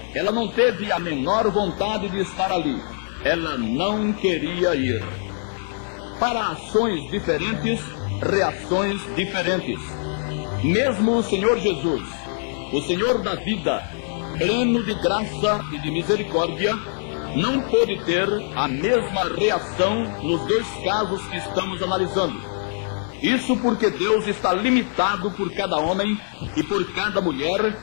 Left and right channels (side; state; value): right; silent; digital silence